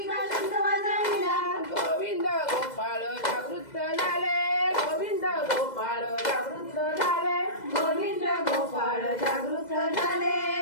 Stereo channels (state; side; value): late; right; 2.0 ms